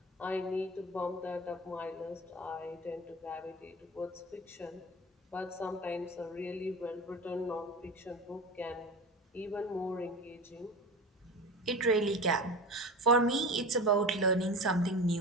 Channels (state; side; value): normal; both; correlation 0.30